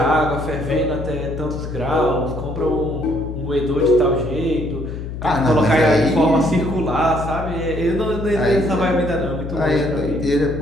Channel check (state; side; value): noise; left; hum, 7 dB below the sound